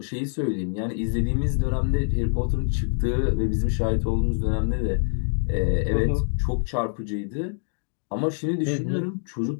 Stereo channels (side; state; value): right; silent; 62 dB below the other